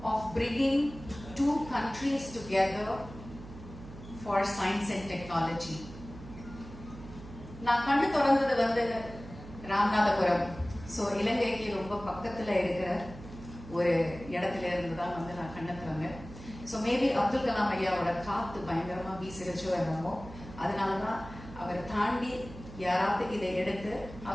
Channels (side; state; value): right; noise; hum, 15 dB below the sound